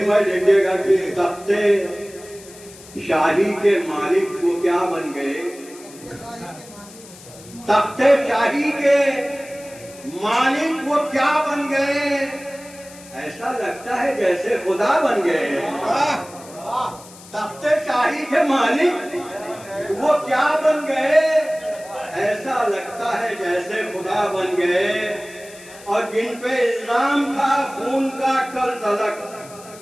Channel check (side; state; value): left; noise; hiss, 20 dB below the sound